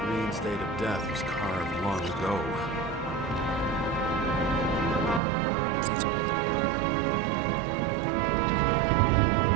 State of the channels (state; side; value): drops out; left; at 5.2 s